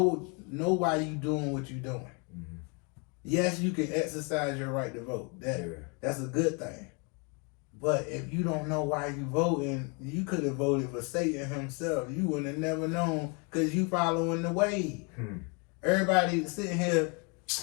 why you doing what you doing. Yes, you can exercise your right to vote. That's a good thing. But if you don't know why you voting, you could have voted for Satan himself. You would have never known because you following the wave. Everybody sitting here,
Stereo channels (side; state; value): right; quieter; 33.3 dB